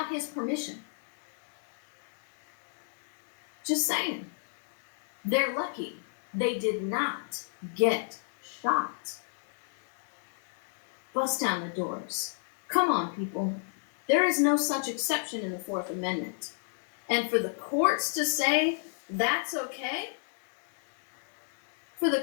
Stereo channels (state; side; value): silent; right; digital silence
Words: his permission? Just saying. They're lucky they did not get shot. Bust down the doors. Come on, people. There is no such exception in the Fourth Amendment. And for the courts to say that's okay, for the